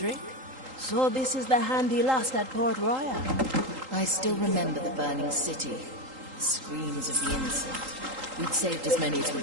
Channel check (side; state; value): left; late; 3.8 ms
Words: So this is the hand he lost at Port Royal. I still remember the burning city. The screams of the innocent. We'd saved as many as we